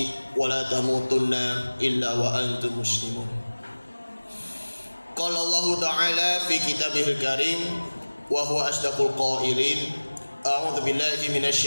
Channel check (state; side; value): inverted; both; correlation -1.00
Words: wa la tamutunna illa wa antum muslimun. Qala Allah ta'ala fi kitabihil karim wa huwa asdaqul qailin. A'udzu billahi